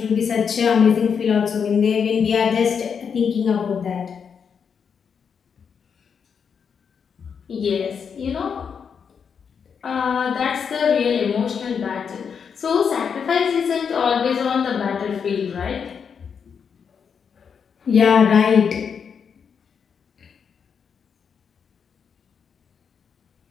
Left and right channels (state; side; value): quieter; right; 6.7 dB